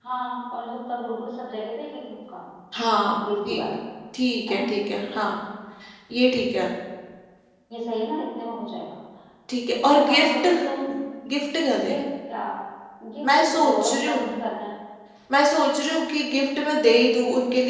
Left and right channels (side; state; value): both; identical; correlation 1.00